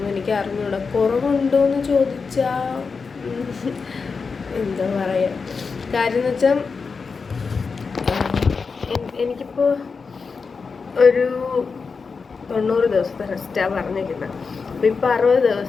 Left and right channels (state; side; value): quieter; right; 5.0 dB